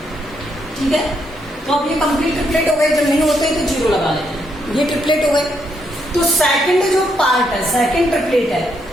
ठीक है, तो अब ये कंप्लीट ट्रिपलेट हो गए। जब नहीं होते तो 0 लगा लेते हैं। ये ट्रिपलेट हो गए। तो सेकंड जो पार्ट है, सेकंड ट्रिपलेट है,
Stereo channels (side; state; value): both; normal; correlation 0.76